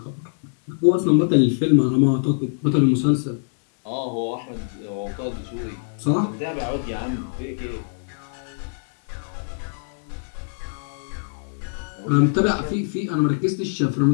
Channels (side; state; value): right; silent; digital silence